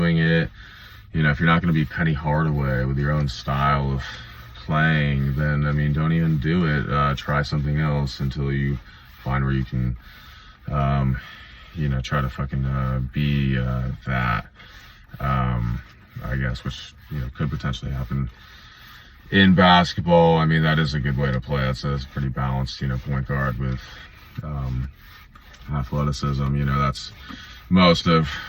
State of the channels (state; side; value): identical; both; correlation 1.00